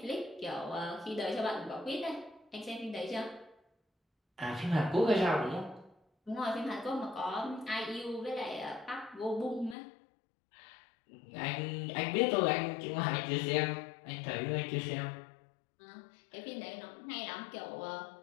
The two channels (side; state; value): right; drops out; at 9.8 s